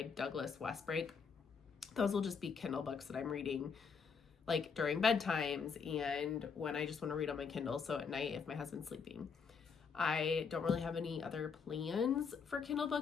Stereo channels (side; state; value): right; quieter; 5.8 dB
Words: Douglas Westbrake. Those will just be Kindle books that I'm reading like during bedtimes and when I just want to read on my Kindle, so at night if my husband's sleeping. I don't really have any other plans for Kindle